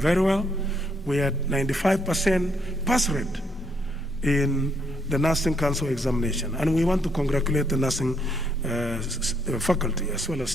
well. We had 95% pass rate in the Nursing Council examination. And we want to congratulate the nursing faculty as well as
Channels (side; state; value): both; normal; correlation 0.72